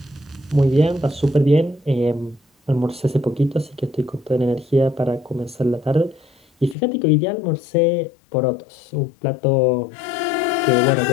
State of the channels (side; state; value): right; drops out; at 6.8 s